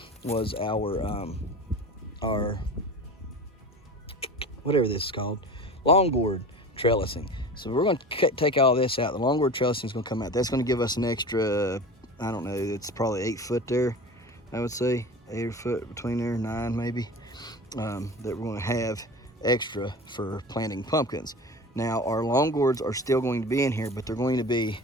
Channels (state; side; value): normal; both; correlation 0.35